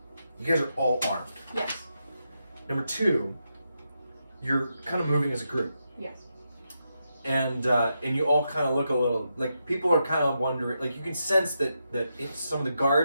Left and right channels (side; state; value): both; inverted; correlation -0.85